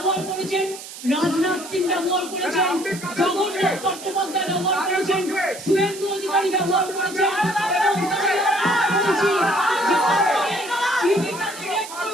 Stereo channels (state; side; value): noise; right; hiss, 13 dB below the sound